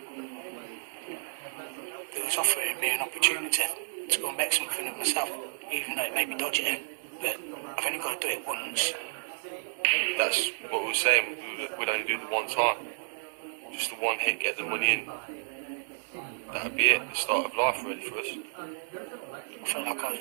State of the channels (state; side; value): silent; left; digital silence